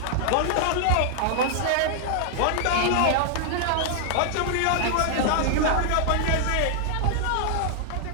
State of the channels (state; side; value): different; both; correlation -0.01